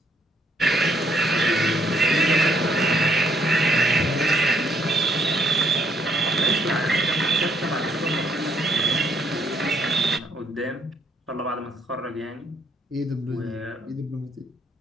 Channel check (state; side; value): normal; both; correlation 0.70